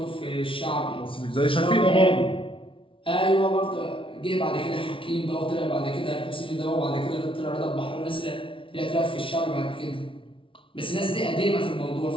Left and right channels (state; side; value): late; right; 0.25 ms